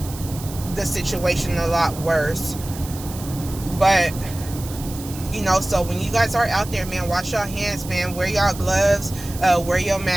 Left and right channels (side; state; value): right; noise; hiss, 14 dB below the sound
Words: the situation a lot worse. But, so when you guys are out there, man, wash your hands, man. Wear your gloves, wear your